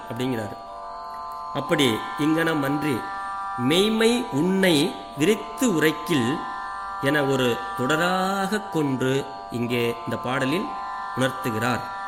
அப்படிங்கிறார். அப்படி இங்கனம் அன்றி மெய்மை உன்னை விரித்து உரைக்கில் என ஒரு தொடராக கொன்று இங்கே இந்த பாடலில் உணர்த்துகிறார்.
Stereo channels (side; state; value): both; identical; correlation 1.00